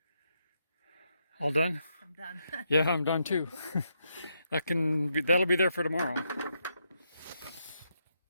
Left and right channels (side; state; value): both; inverted; correlation -0.80